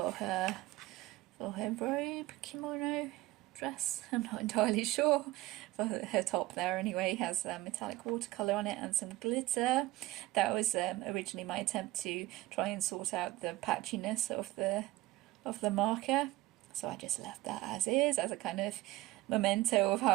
her robe, kimono, dress, I'm not entirely sure. For her top there anyway has metallic watercolour on it and some glitter. That was originally my attempt to try and sort out the patchiness of the marker, so I just left that as is, as a kind of memento of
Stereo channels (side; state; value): left; quieter; 17.9 dB